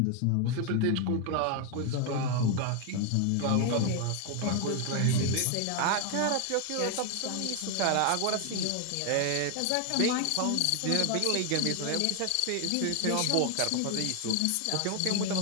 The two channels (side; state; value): both; different; correlation 0.01